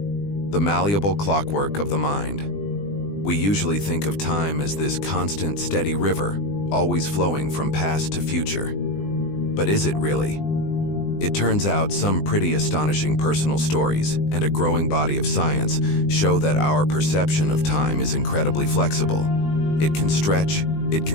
the malleable clockwork of the mind. We usually think of time as this constant, steady river, always flowing from past to future. But is it really? It turns out some pretty astonishing personal stories and a growing body of science show that our perception of time is incredibly flexible. It can stretch, it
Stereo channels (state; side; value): late; right; 20 ms